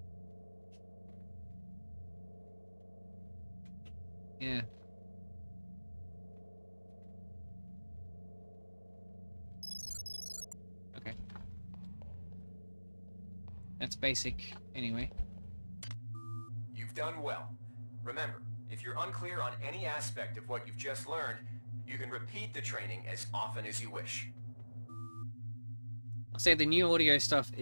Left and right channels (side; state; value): both; inverted; correlation -1.00